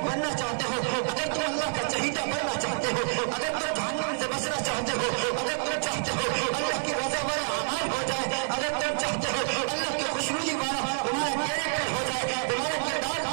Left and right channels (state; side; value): silent; left; digital silence